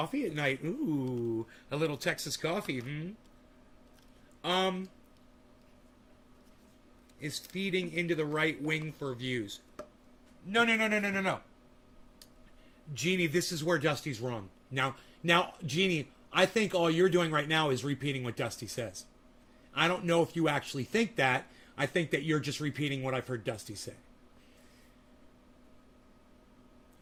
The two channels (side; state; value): both; identical; correlation 1.00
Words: at night. Ooh, a little Texas coffee. Is feeding into the right wing for views. No. Jeannie, this is where Dusty's wrong. Now, Jeannie, I think all you're doing right now is repeating what Dusty says. I don't know if you actually think that. I think that you're just repeating what I've heard Dusty say.